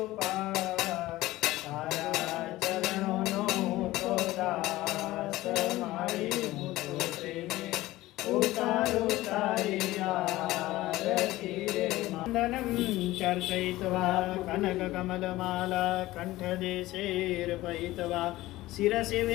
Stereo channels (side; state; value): right; quieter; 17.3 dB